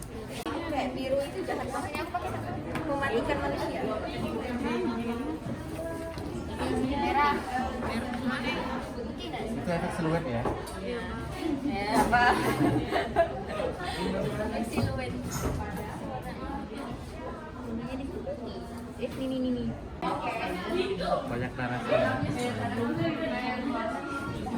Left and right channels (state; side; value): identical; both; correlation 1.00